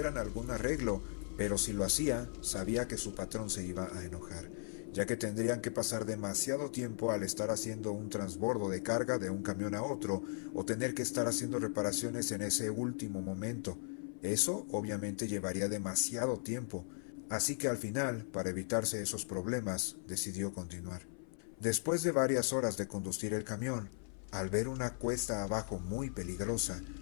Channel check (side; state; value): right; silent; 53 dB below the other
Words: algún arreglo, pero si lo hacía, sabía que su patrón se iba a enojar, ya que tendrían que pasar demasiado tiempo al estar haciendo un transbordo de carga de un camión a otro o tener que estar haciendo reparaciones en ese último momento. Eso obviamente llevaría demasiado tiempo, así que al final, para evitarse esos problemas, decidió continuar. Después de varias horas de conducir el camión, al ver una cuesta abajo muy peligrosa,